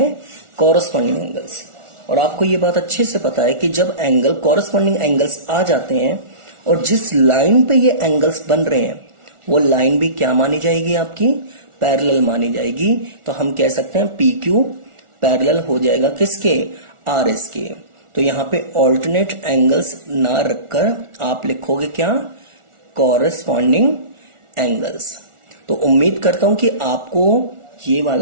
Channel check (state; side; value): late; left; 1.4 ms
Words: कॉरस्पॉन्डिंग एंगल्स। और आपको ये बात अच्छे से पता है कि जब एंगल कॉरस्पॉन्डिंग एंगल्स आ जाते हैं और जिस लाइन पे ये एंगल्स बन रहे हैं वो लाइन भी क्या मानी जाएगी, आपकी पैरेलल मानी जाएगी। तो हम कह सकते हैं PQ पैरेलल हो जाएगा किसके, RS के। तो यहां पे ऑल्टरनेट एंगल्स ना रखकर आप लिखोगे क्या, कॉरस्पॉन्डिंग एंगल्स। तो उम्मीद करता हूं कि आपको ये